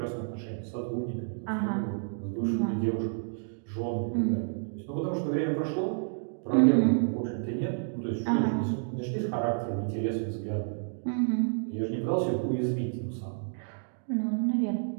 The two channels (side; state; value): left; silent; digital silence